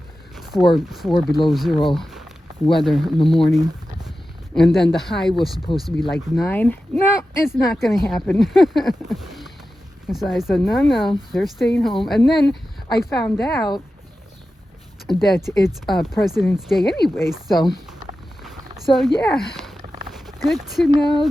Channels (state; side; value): normal; both; correlation 0.93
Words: 4 below zero weather in the morning. And then the high was supposed to be like 9. No, it's not going to happen. So I said, no, they're staying home. And then I found out that it's President's Day anyway, so yeah, good to